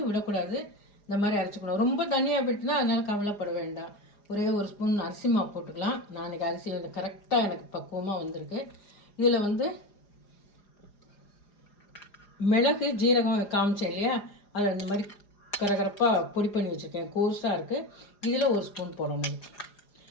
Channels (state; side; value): late; right; 4.9 ms